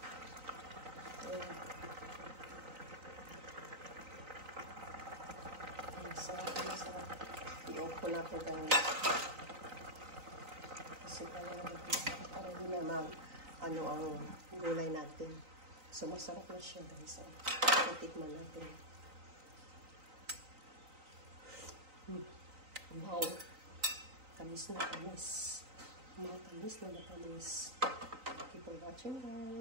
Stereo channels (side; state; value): left; late; 3.9 ms